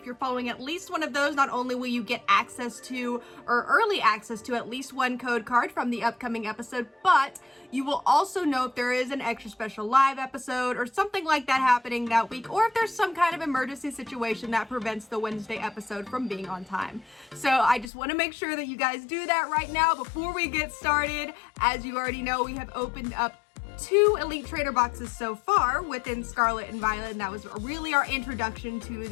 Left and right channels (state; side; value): drops out; right; at 17.9 s